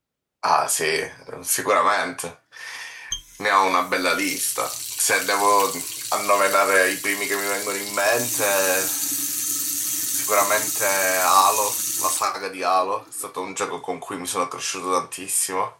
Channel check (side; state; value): both; identical; correlation 1.00